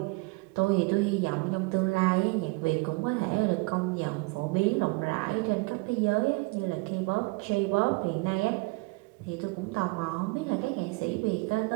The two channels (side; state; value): left; quieter; 27.1 dB